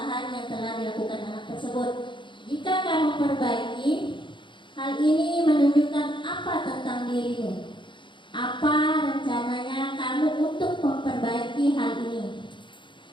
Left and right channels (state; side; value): late; right; 0.23 ms